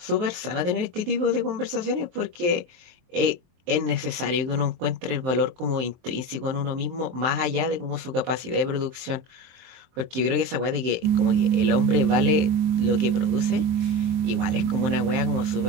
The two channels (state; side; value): late; left; 23 ms